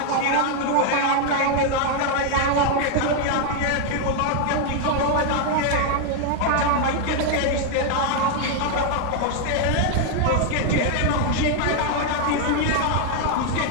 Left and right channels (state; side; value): different; both; correlation 0.00